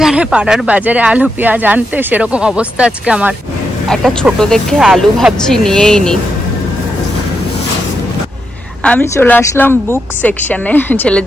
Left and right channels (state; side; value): normal; both; correlation 0.84